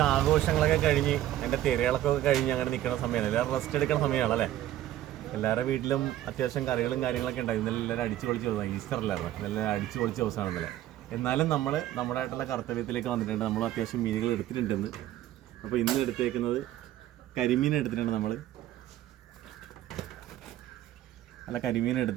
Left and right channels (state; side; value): quieter; left; 13.3 dB